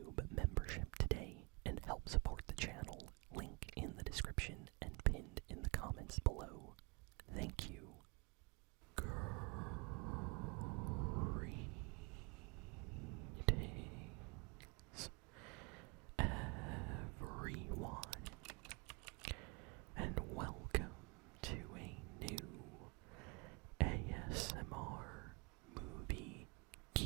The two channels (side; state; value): left; quieter; 30.0 dB